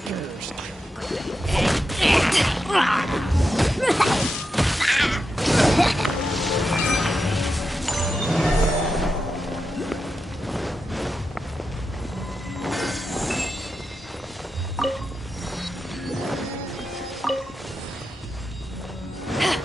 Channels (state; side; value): normal; both; correlation 0.88